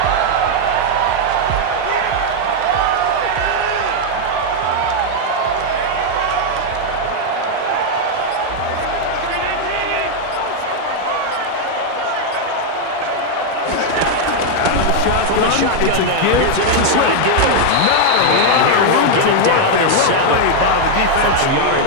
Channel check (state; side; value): different; both; correlation 0.00